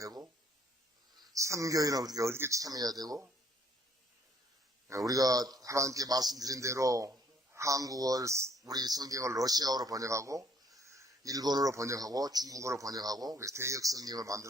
선교회는 어떻게 참여해야 되고 우리가 하나님께 말씀드린 대로 한국어 우리 성경을 러시아어로 번역하고 일본어로 번역하고 중국어로 번역하고 대역 성경을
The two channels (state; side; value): normal; both; correlation 0.63